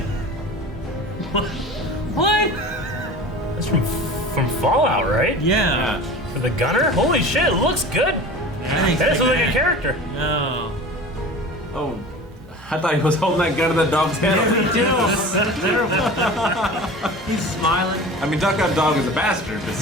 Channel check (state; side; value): normal; both; correlation 0.37